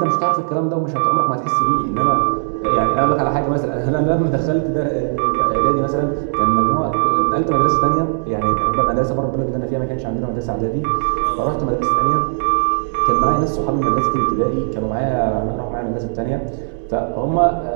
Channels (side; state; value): left; silent; digital silence